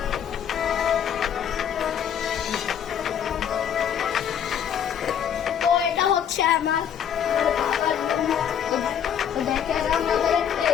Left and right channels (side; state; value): right; quieter; 8.8 dB